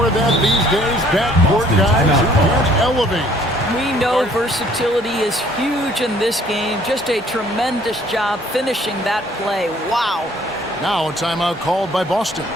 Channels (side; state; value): both; normal; correlation 0.59